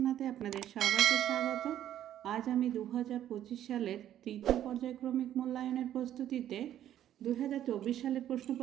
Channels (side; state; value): left; quieter; 11.4 dB